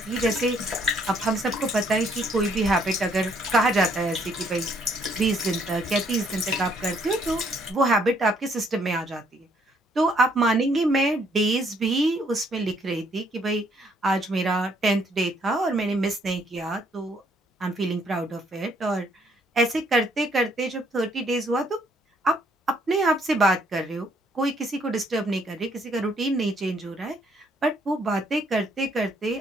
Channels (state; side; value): normal; both; correlation 0.67